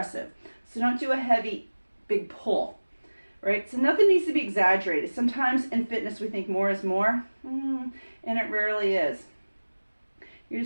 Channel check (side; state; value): both; inverted; correlation -1.00